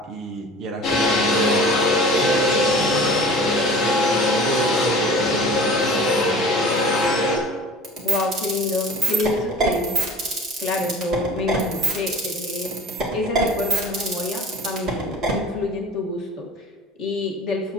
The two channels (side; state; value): both; normal; correlation 0.45